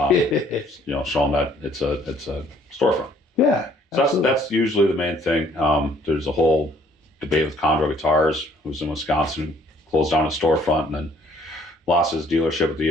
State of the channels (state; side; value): normal; both; correlation 0.60